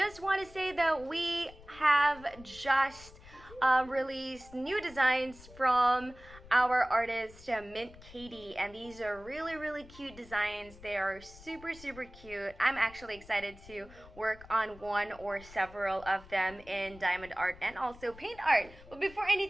want to say that we have just released new designs from our artist Mint Katie, and these are really cute designs. They are super cute. I'm actually excited to work on one or several of them in diamond art and also paint art. But before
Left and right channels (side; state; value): left; noise; rumble, 20 dB below the sound